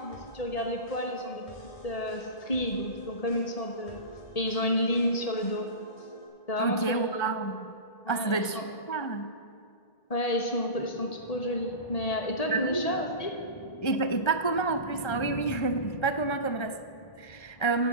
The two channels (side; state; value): right; late; 1.3 ms